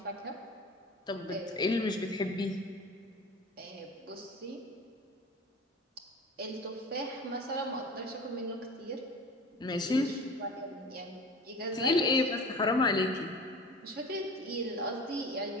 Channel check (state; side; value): normal; both; correlation 0.37